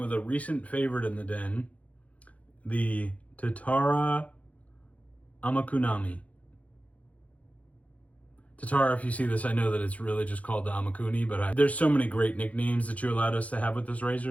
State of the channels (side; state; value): right; late; 0.067 ms